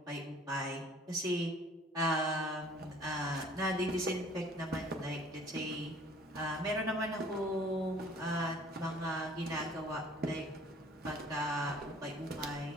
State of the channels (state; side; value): normal; both; correlation 0.53